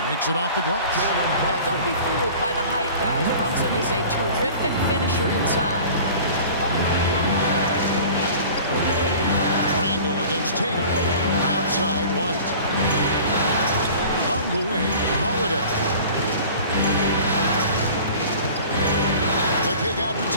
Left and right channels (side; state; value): both; inverted; correlation -0.43